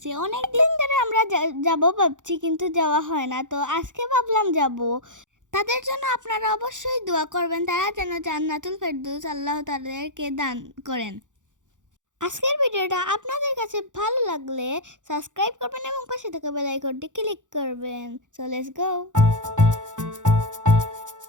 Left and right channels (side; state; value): left; late; 0.86 ms